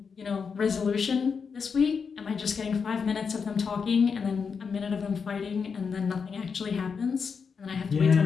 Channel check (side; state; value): right; quieter; 5.8 dB